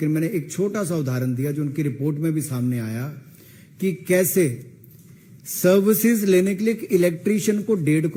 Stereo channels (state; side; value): identical; both; correlation 1.00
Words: मैंने एक छोटा सा उदाहरण दिया जो उनकी रिपोर्ट में भी सामने आया कि कैसे सर्विसेज लेने के लिए एक इलेक्ट्रीशियन को 1.5